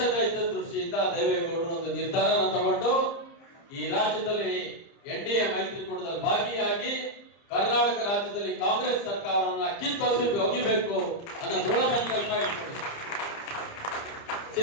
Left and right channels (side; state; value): right; late; 30 ms